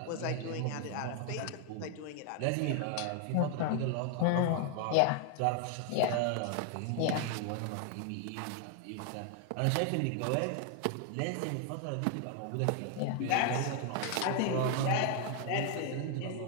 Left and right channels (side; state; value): both; different; correlation 0.00